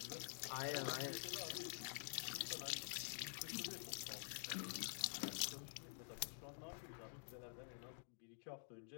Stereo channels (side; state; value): right; silent; digital silence